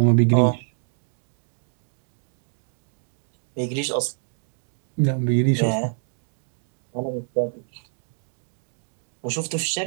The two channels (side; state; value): left; silent; digital silence